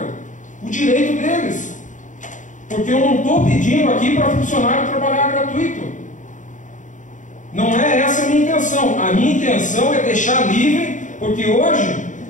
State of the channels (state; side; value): late; right; 0.36 ms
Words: o direito deles. Porque eu não estou pedindo aqui para funcionário trabalhar gratuito. Não é essa a minha intenção. A minha intenção é deixar livre, porque hoje